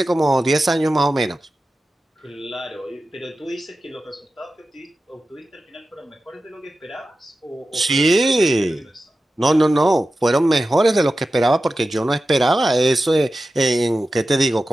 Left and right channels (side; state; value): both; normal; correlation 0.93